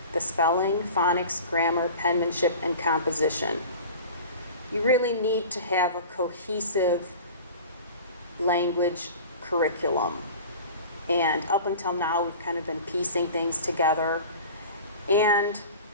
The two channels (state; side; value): inverted; both; correlation -0.38